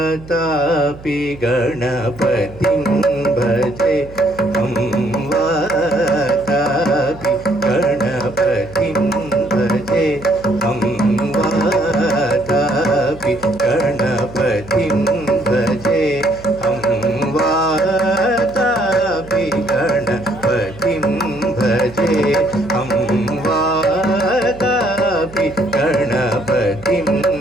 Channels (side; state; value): right; noise; hum, 18 dB below the sound